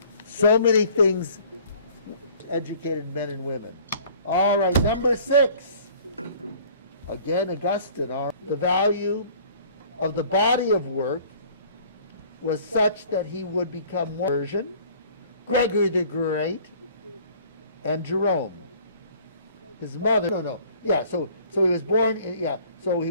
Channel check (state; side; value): inverted; both; correlation -0.52